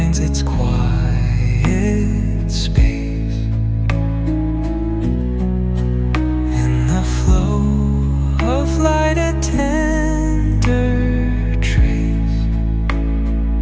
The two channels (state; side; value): identical; both; correlation 1.00